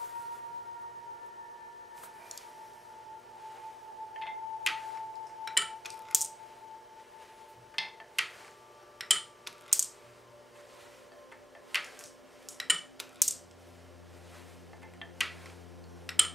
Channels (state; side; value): normal; both; correlation 0.90